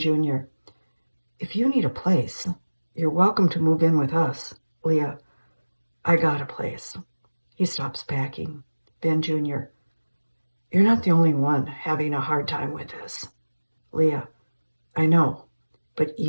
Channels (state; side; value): inverted; both; correlation -1.00